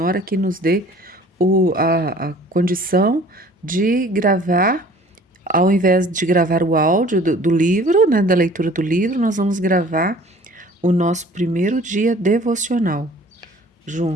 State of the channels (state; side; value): normal; both; correlation 0.50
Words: que nos dê a condição de gravar. Ao invés de gravar o áudio do livro, né, da leitura do livro, nós vamos gravar o nosso primeiro dia devocional